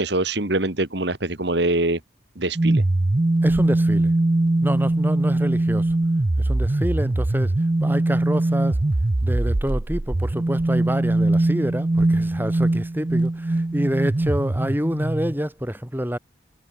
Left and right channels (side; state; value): both; normal; correlation 0.87